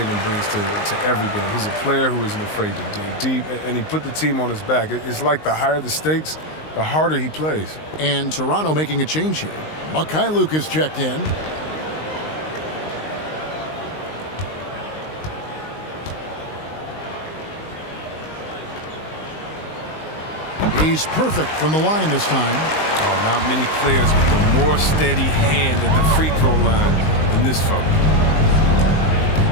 brings to every game. He's a player who isn't afraid to dig deep, and he put the team on his back. It's like the higher the stakes, the harder he plays. And Toronto making a change here. Mikhailuk is checked in. He's perfect from the line this time. Oh, not many players with a more steady hand at the free throw line than this fella.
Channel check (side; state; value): right; late; 19 ms